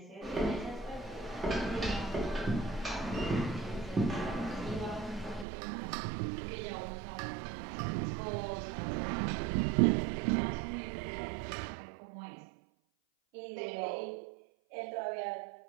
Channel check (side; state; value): left; drops out; at 5.5 s